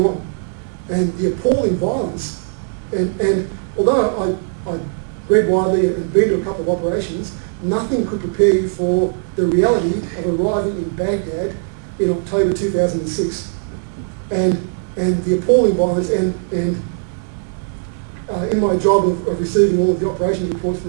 on. and the appalling violence. And although I read widely and been to a couple of operations, nothing could prepare you for the reality of arriving in Baghdad in October 2006. And the appalling violence, and in my job of receiving all of the operations reports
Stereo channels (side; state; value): left; silent; 65 dB below the other